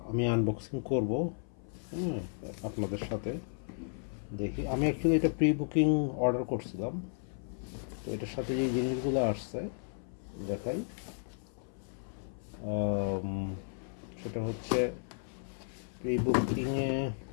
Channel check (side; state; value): right; silent; 55 dB below the other